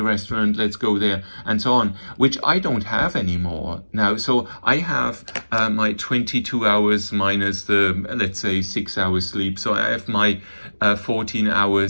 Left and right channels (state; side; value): inverted; both; correlation -1.00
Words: restaurant, let's go there, and so on, which I don't have anymore now. So I have my 22 hours minus the, let's say, 6 hours sleep. So I have my 14